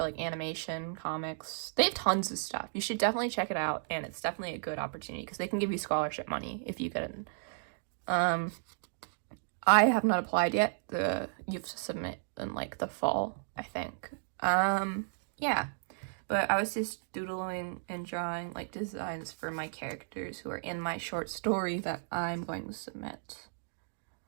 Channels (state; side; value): silent; left; digital silence